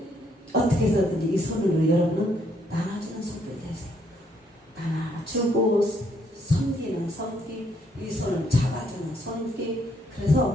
어떻게 해서든지 이 손으로 여러분은 나눠주는 손들이 되세요. 나눠주고 섬기는 섬기, 이 손을 잡아주는 섬기.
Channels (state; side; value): normal; both; correlation 0.71